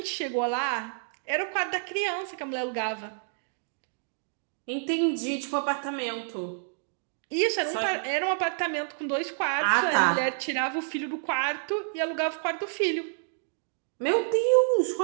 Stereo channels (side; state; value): left; silent; digital silence